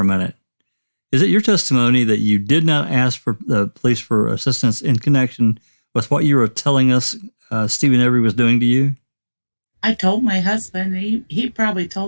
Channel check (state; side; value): inverted; both; correlation -1.00